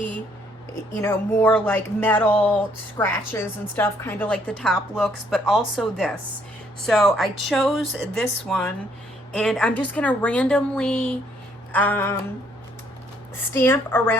you know, more like metal scratches and stuff, kind of like the top looks, but also this. So I chose this one, and I'm just gonna randomly stamp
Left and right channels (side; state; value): both; normal; correlation 0.67